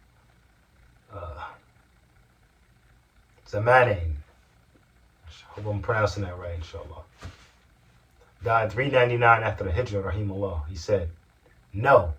Zamanain, I hope I'm pronouncing that right, inshallah, died 399 after the Hijrah, rahimahullah. He said, "No,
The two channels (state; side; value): identical; both; correlation 1.00